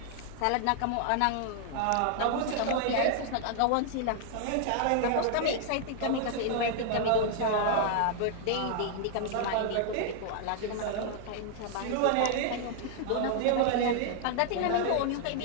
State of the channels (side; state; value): both; different; correlation 0.00